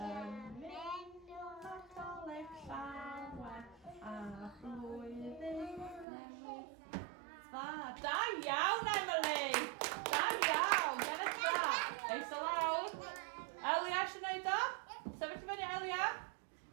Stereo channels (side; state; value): left; drops out; at 6.1 s